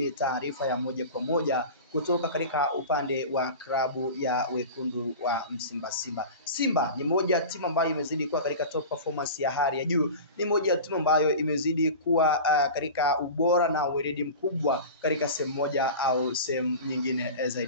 taarifa ya moja kwa moja kutoka katika upande wa klabu ya wekundu wa Msimba Simba. Simba ni moja timu ambayo imezidi kuwa katika top performance ya hali ya juu. Ni moja ya timu ambayo imezidi kuwa katika ubora na weledi mkubwa katika sehemu moja au sehemu nyingine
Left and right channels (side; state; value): both; inverted; correlation -0.33